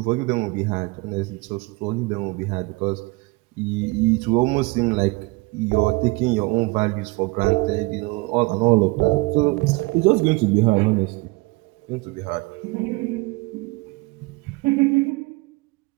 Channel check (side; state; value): left; quieter; 25.0 dB